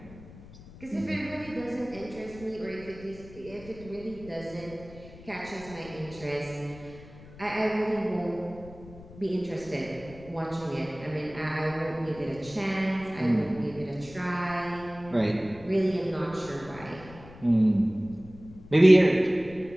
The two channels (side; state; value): left; noise; rumble, 18 dB below the sound